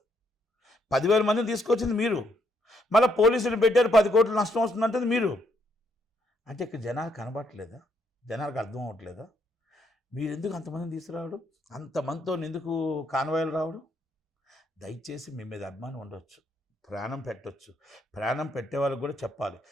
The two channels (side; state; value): both; normal; correlation 0.73